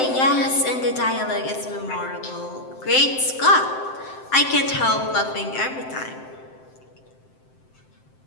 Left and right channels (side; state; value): right; late; 7.7 ms